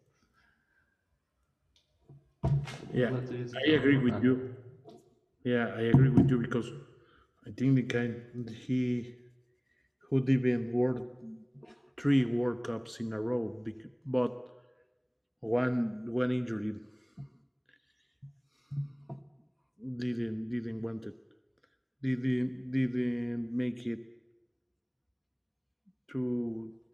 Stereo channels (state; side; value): identical; both; correlation 1.00